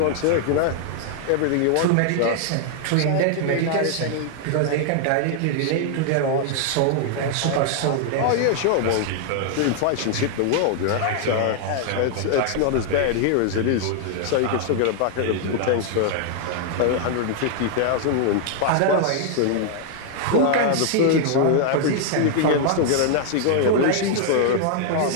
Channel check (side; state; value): both; different; correlation 0.00